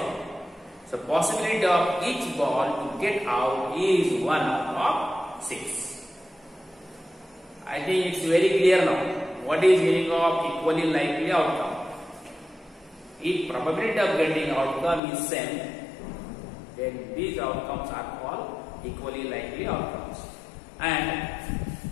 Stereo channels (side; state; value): right; drops out; at 15.0 s